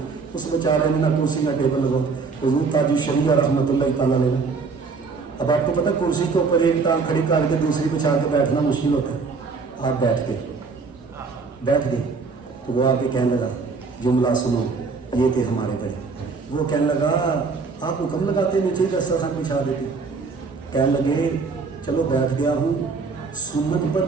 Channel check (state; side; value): quieter; left; 4.7 dB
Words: उस बेचारे ने ना कुर्सी ना टेबल लगो। हुजूर ताज शरिया रहमतुल्लाह तआला अलैह। अब आपको पता है कुर्सी के ऊपर एक टांग खड़ी करके दूसरी बिछा के बैठना मुश्किल होता है। आप बैठ गए तो वो आके कहने लगा, जुमला सुनो, ये थे हमारे बड़े। वो कहने लगा आप हुक्म लगाते नीचे दस्तरखान बिछा देते। कहने लगे चलो बैठ गया हूँ, सुन्नत पर